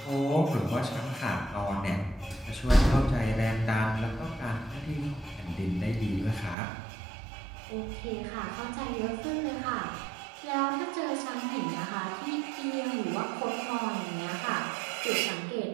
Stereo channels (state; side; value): drops out; left; at 6.6 s